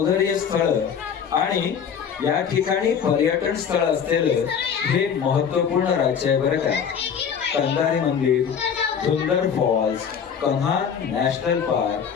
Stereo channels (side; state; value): right; quieter; 7.4 dB